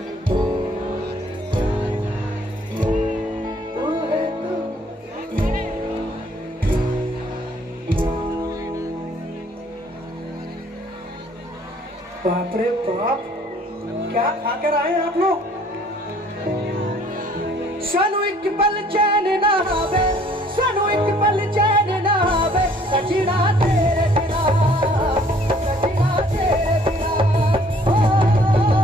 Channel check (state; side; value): normal; both; correlation 0.59